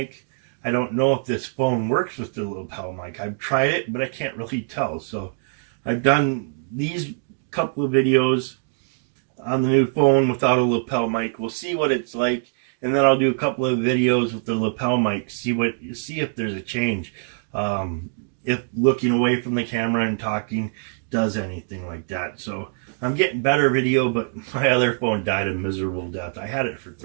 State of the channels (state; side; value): silent; left; 63 dB below the other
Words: I don't know if this phone works with the lapel mic. I've tried it, but I can't really tell. So I've done these couple of videos on the new phone without a lapel mic. We'll see what it's like. And then I'll do a couple of videos with the lapel mic, see if there's a change. If looking away from the camera and talking does anything like that. So I'm getting better video, but my other phone died a miserable death. I had it for